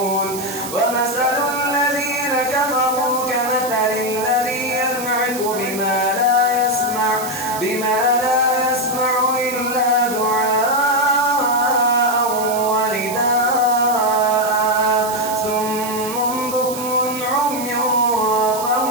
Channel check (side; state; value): right; noise; hiss, 10 dB below the sound